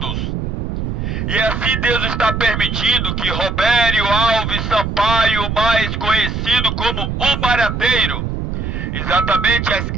E assim Deus está permitindo que Robério Alves Sampaio, mais conhecido como o Barateiro, exatamente às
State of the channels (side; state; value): right; noise; rumble, 3 dB below the sound